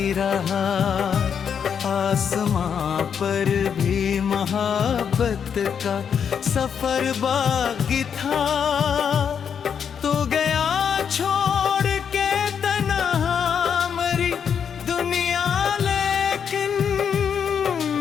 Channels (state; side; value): quieter; right; 7.4 dB